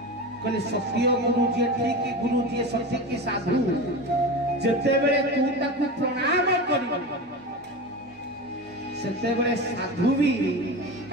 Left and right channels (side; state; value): both; normal; correlation 0.26